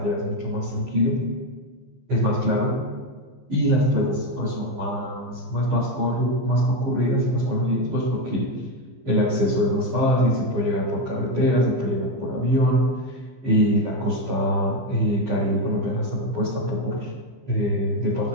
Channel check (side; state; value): left; late; 15 ms